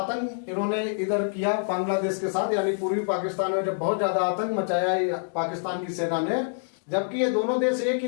इन्होंने इधर किया बांग्लादेश के साथ, यानी पूर्वी पाकिस्तान में जब बहुत ज्यादा आतंक मचाया पाकिस्तान की सेना ने, जबकि ये दोनों देश एक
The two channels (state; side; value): silent; right; digital silence